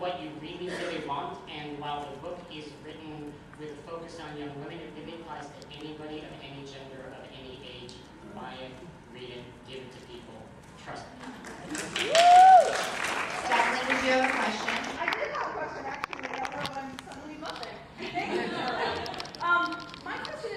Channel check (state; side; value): identical; both; correlation 1.00